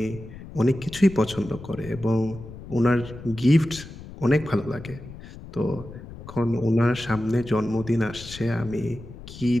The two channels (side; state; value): left; noise; rumble, 14 dB below the sound